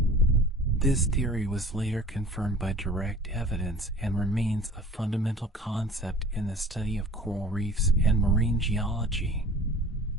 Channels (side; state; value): both; normal; correlation 0.44